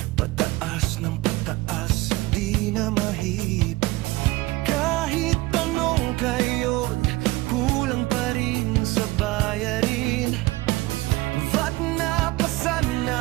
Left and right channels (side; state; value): left; quieter; 20.1 dB